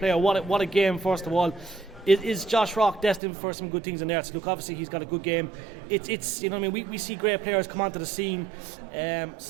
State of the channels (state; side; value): drops out; left; at 3.2 s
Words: What a game! First of all, is Josh Rock destined for some good things in there? So look, obviously he's got a good game. It's we see great players come onto the scene.